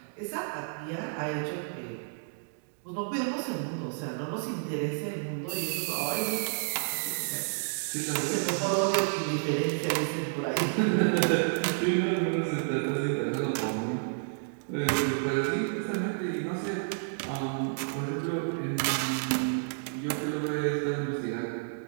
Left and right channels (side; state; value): left; silent; digital silence